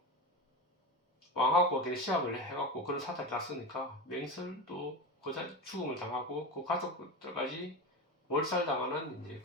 왕하고 걔네 시합을 해갖고 그런 사달이 났으니까 맹설도 그 죽음을 당하고 그 가족들까지 몰살당하는 이제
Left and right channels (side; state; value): both; normal; correlation 0.23